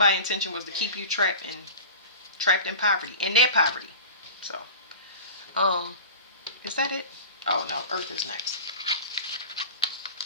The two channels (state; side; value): inverted; both; correlation -0.35